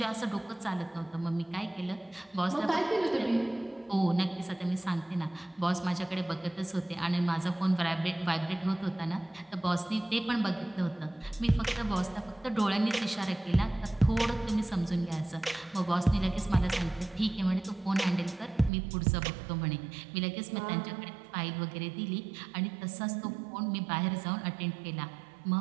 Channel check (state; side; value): drops out; left; at 18.7 s